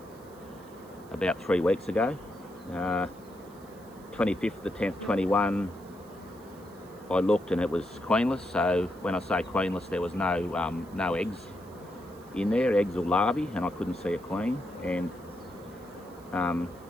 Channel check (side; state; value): right; noise; hiss, 27 dB below the sound